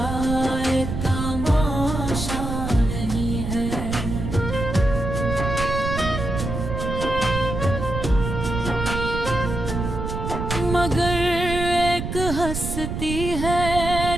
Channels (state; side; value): noise; right; rumble, 4 dB below the sound